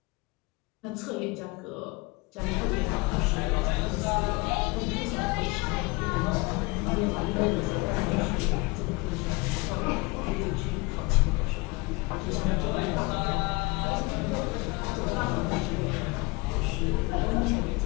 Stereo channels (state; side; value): quieter; right; 25.8 dB